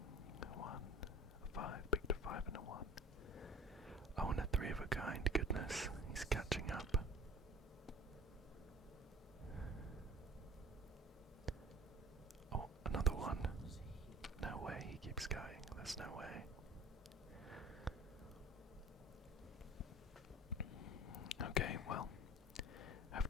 1. A 5. Picked a 5 and a 1. Oh, and a 3 of a kind. Goodness. He's catching up. Oh, another 1. No way. He keeps going. There's no way. Okay, well,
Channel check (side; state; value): both; normal; correlation 0.43